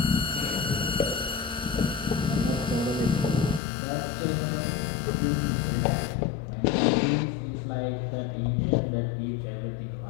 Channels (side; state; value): right; drops out; at 3.6 s